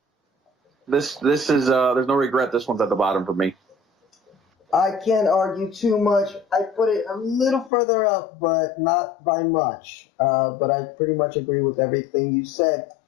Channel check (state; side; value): drops out; right; at 7.7 s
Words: this is there's no regret. This one's at the bottom for me. I can't argue too much. I put it a little further up, but not by much. But I pretty much agree with everything you said.